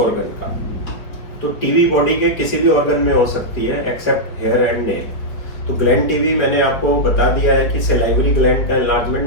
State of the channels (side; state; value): right; late; 4.6 ms